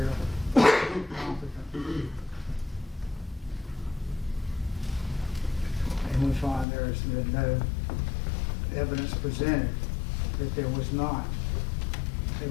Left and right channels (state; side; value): drops out; right; at 6.7 s